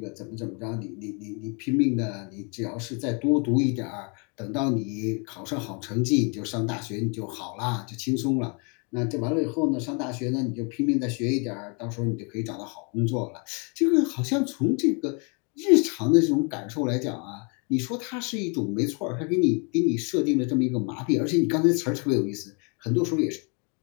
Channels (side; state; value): right; quieter; 35.1 dB